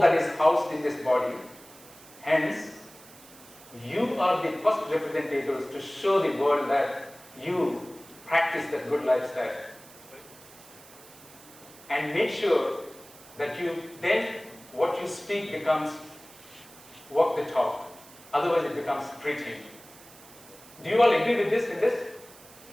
that is housed in this body. Hence, you are the first representatives to show the world that you practice that good lifestyle. And make sure that what you speak becomes walk the talk. Otherwise it becomes preaching. Do you all agree with this?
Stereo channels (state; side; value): noise; right; hiss, 21 dB below the sound